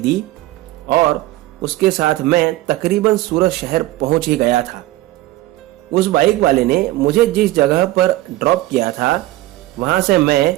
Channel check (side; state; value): left; quieter; 17.0 dB